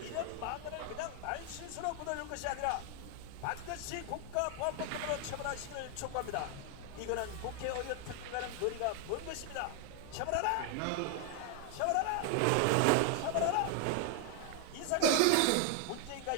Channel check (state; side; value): different; both; correlation 0.00